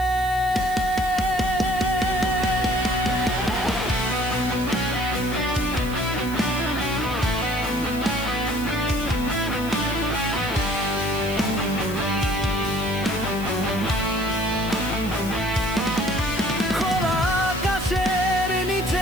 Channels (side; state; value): left; noise; hiss, 16 dB below the sound